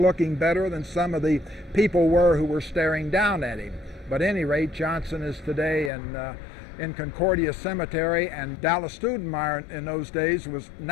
better than some of the people were who were staring down at him. But at any rate, Johnson is today in Concordia Cemetery, and Dallas Stoudenmire in those days was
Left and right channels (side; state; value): right; drops out; at 5.9 s